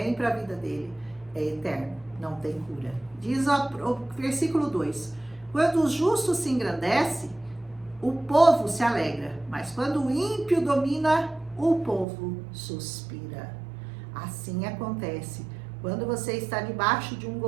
para a vida dele é eterno, não tem cura. Diz o versículo 2, quando o justo se engrandece, o povo se alegra, mas quando o ímpio domina, o povo suspira. Assim acontece quando você está debaixo de um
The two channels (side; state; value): left; drops out; at 12.1 s